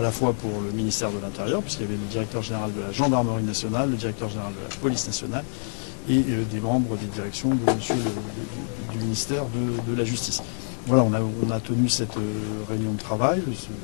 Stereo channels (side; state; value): right; silent; digital silence